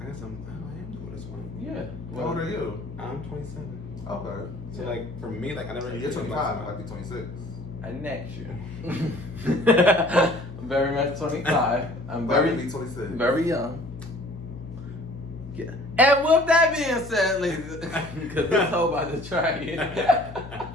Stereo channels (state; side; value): noise; left; hum, 14 dB below the sound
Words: I guess I am the oldest one. Yeah. How old are you? I'm 27. Okay. So like for me, like I never. You're 25. I'd be 26. Next year. I'm very much 25. I'm Very very, be 26. very young. Yeah. And with that being said, ladies, because this whole about to try it.